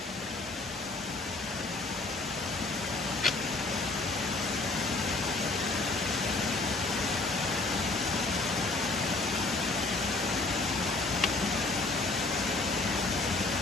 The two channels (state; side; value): quieter; right; 3.3 dB